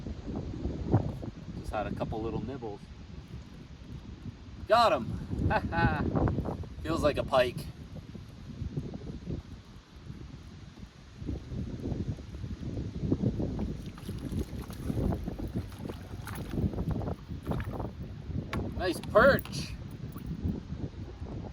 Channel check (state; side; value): identical; both; correlation 1.00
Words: Just had a couple little nibbles. Got him! Feels like a pike. Nice perch.